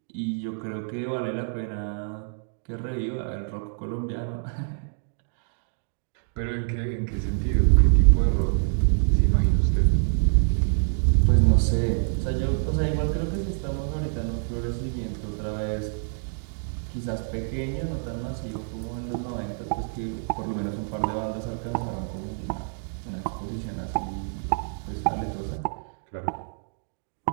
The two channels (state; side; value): silent; left; digital silence